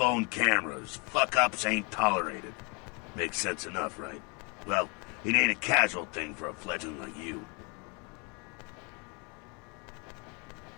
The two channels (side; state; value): right; quieter; 32.3 dB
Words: cameras. Fuck-ups ain't tolerated. Makes sense enough, right? Well, it ain't a casual thing for a fledgling like you.